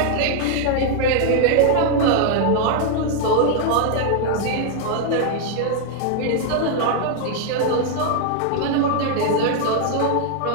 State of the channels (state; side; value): different; both; correlation 0.00